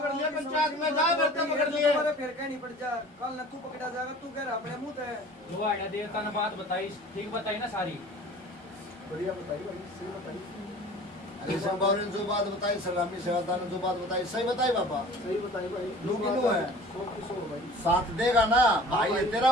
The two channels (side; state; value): both; normal; correlation 0.45